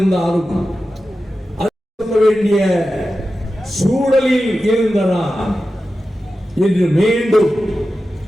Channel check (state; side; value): normal; both; correlation 0.93